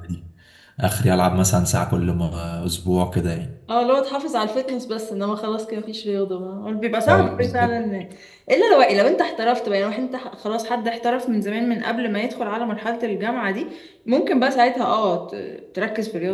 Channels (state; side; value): identical; both; correlation 1.00